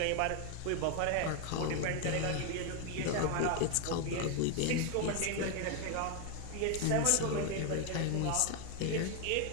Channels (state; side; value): different; both; correlation 0.01